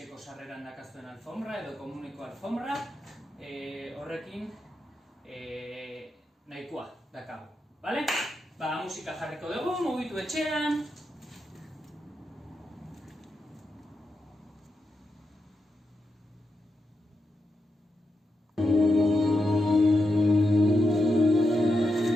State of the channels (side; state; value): both; normal; correlation 0.87